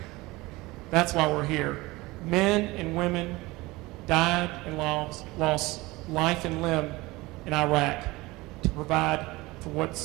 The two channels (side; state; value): left; quieter; 21.3 dB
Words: That's why we're here. Men and women died and lost life and limb in Iraq to provide for